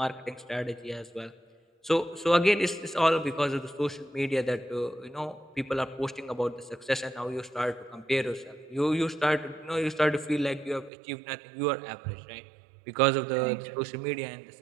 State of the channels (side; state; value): left; drops out; at 10.9 s